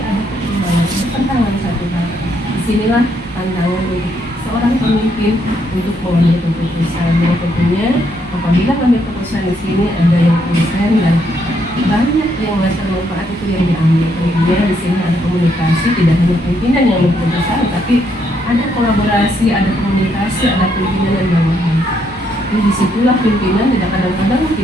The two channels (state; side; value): normal; both; correlation 0.74